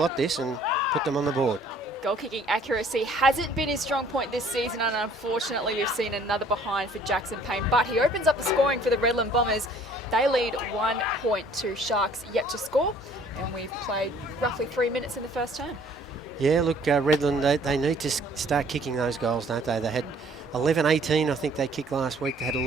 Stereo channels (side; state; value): both; normal; correlation 0.57